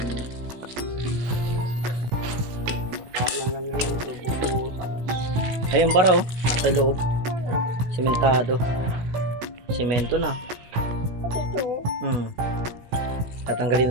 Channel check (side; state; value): left; late; 16 ms